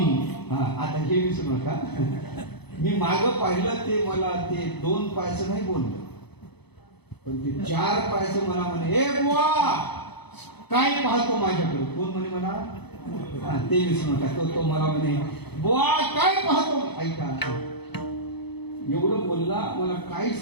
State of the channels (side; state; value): right; late; 0.98 ms